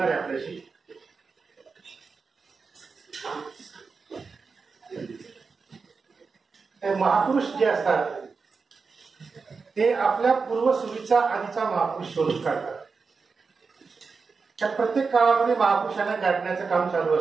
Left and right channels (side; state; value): left; quieter; 4.8 dB